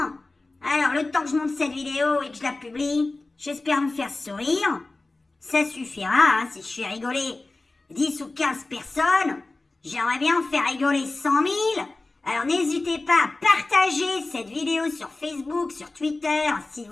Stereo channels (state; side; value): quieter; right; 3.2 dB